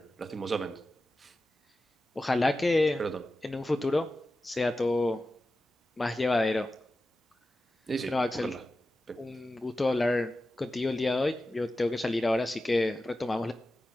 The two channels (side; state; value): both; normal; correlation 0.93